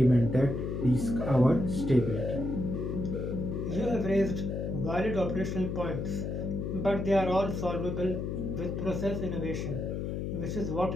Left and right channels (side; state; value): left; noise; hum, 3 dB below the sound